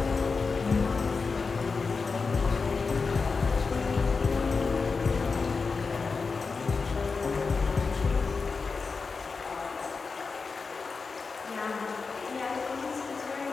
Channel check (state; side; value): quieter; right; 4.6 dB